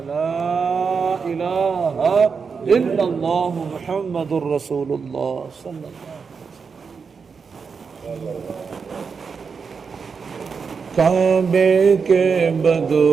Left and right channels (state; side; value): quieter; left; 5.6 dB